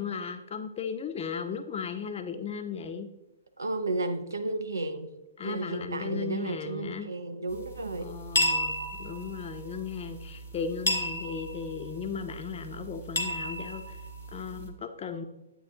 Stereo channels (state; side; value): inverted; both; correlation -0.45